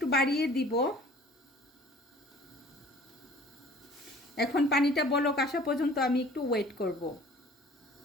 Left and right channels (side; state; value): both; normal; correlation 0.50